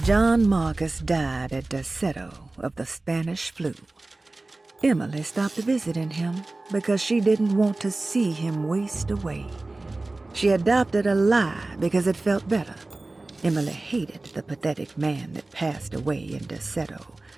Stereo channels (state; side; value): quieter; left; 3.1 dB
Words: John Marcus died at Derceto of the Spanish flu. Emily stopped visiting him because she didn't want to see him waste away. She adopted a lie because it felt better. Emily hated the pathetic man that passed away in Derceto,